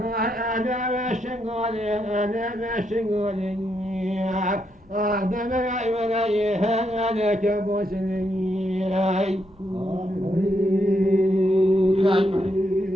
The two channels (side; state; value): both; normal; correlation 0.79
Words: أنا بشنقولي أنا بشنقولي أهدم العيوني أنا كبوسني